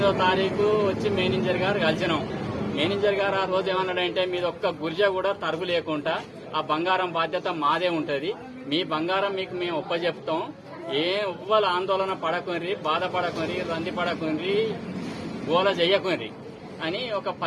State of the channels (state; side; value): identical; both; correlation 1.00